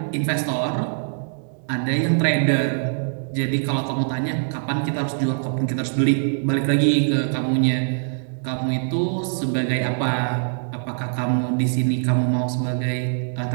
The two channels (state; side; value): silent; left; digital silence